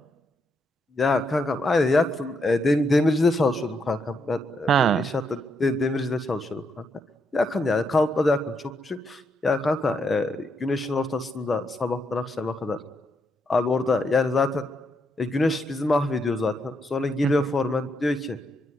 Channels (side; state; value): both; normal; correlation 0.78